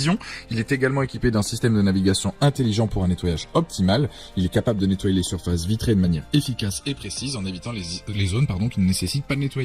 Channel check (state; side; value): identical; both; correlation 1.00